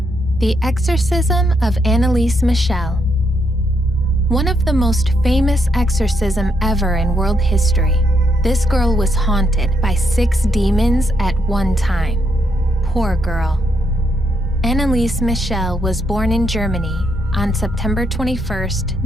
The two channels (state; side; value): normal; both; correlation 0.77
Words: The Exorcism of Anneliese Michel. One of the most famous exorcism ever in world history, this girl was haunted by 6 demons at one time. Poor girl. Anneliese Michel was born in Germany on September 21st,